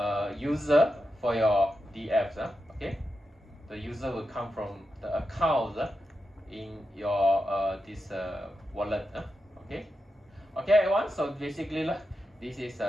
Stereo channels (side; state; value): both; normal; correlation 0.88